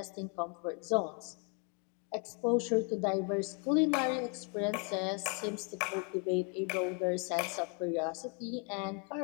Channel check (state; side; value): quieter; right; 37.6 dB